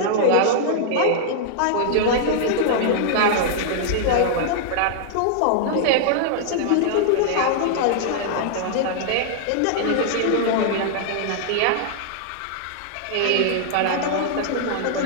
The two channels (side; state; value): both; different; correlation -0.01